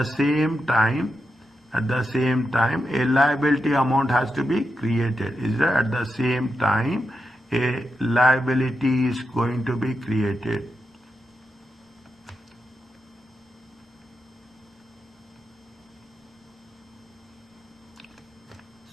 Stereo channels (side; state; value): both; normal; correlation 0.87